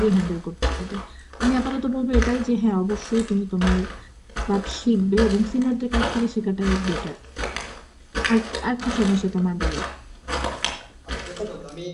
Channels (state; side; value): identical; both; correlation 1.00